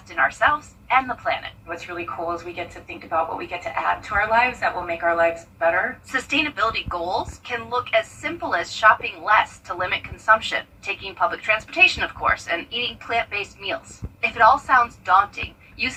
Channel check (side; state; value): both; identical; correlation 1.00